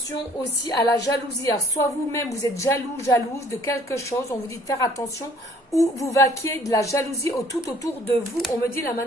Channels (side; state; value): both; normal; correlation 0.57